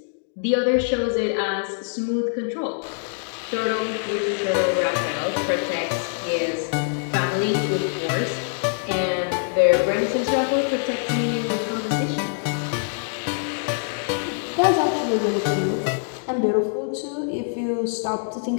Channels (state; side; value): silent; right; 63 dB below the other